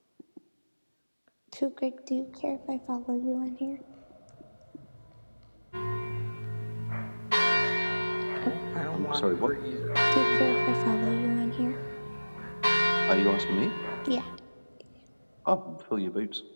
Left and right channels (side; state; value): both; inverted; correlation -1.00